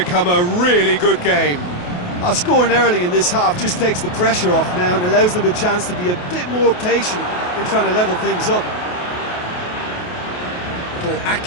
a really good game. Scoring early in this half just takes the pressure off now and allows them a chance to be a bit more patient in trying to level things up. Little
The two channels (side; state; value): right; late; 28 ms